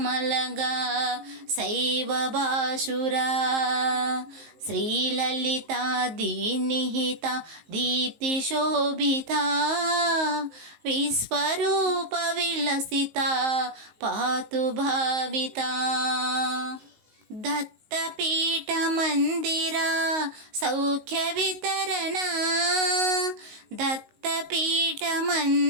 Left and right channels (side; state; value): left; late; 19 ms